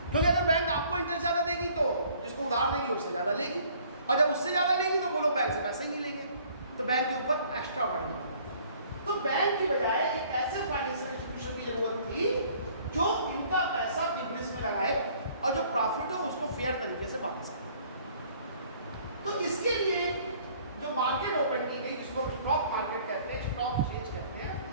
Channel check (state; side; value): inverted; both; correlation -0.57